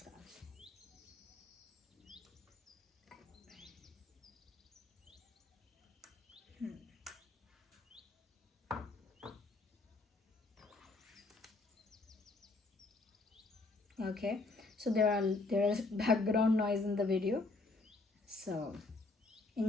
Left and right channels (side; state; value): right; quieter; 3.3 dB